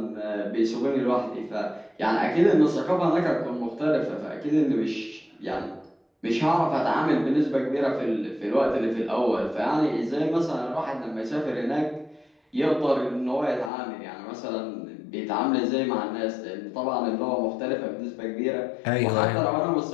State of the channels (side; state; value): right; drops out; at 13.7 s